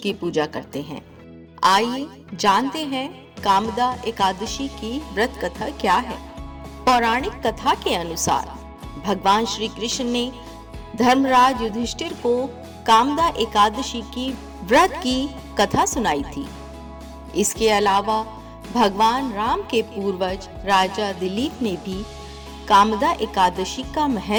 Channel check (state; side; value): identical; both; correlation 1.00